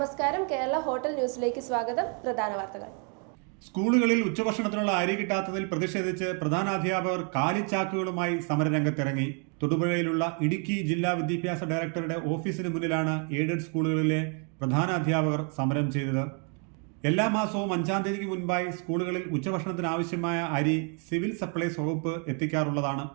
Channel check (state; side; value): quieter; left; 38.7 dB